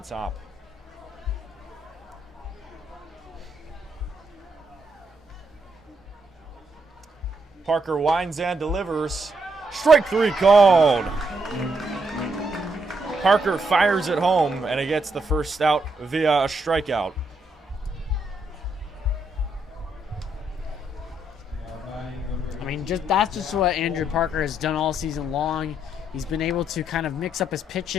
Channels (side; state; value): both; normal; correlation 0.76